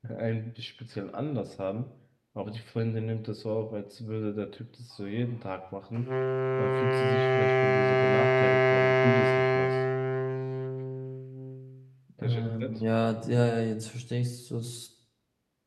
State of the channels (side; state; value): both; identical; correlation 1.00